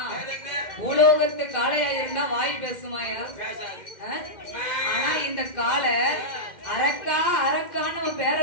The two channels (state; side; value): late; right; 2.1 ms